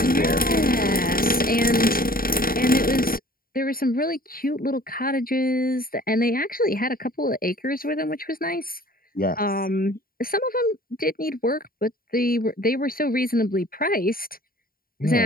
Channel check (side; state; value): right; late; 0.42 ms